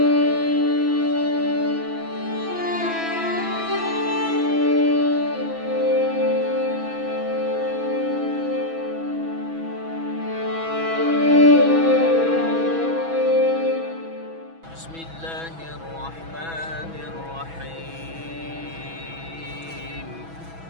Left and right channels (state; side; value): late; left; 6.1 ms